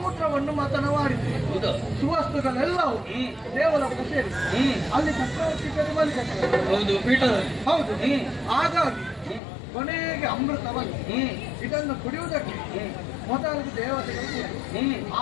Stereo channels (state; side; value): drops out; right; at 9.4 s